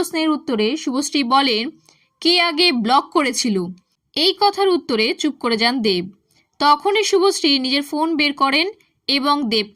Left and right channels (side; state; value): both; identical; correlation 1.00